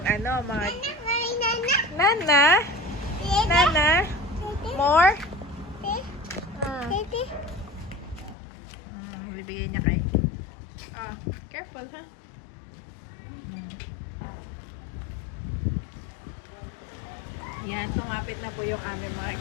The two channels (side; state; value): right; drops out; at 8.3 s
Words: ano, mga... Nana? Nana? More? Bibigay niya kay. Oh, careful ha. Yan, tumapit na po yung aming mga